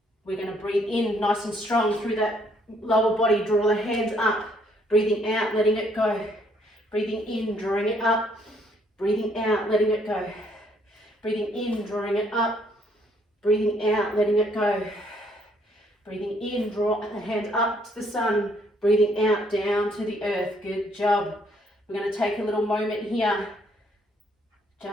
We're going to breathe in nice and strong through that lower body. Draw the hands up. Breathing out, letting it go. Breathing in, drawing it up. Breathing out, letting it go. Breathing in, drawing it up. Breathing out, letting it go. Breathing in, draw the hands up to the sun. Breathing out, down to the earth. Good job. We're going to take a little moment here.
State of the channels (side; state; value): both; normal; correlation 0.67